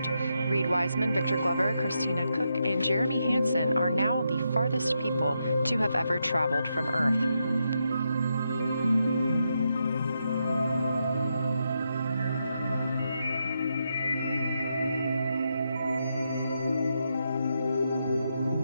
Reed Wiseman, Victor Glover, Christina Cook, and Jeremy Hansen are now the farthest people to have ever traveled from Earth.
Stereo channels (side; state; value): both; inverted; correlation -0.83